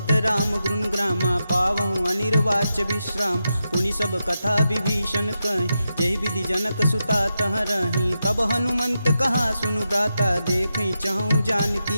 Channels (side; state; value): both; inverted; correlation -0.88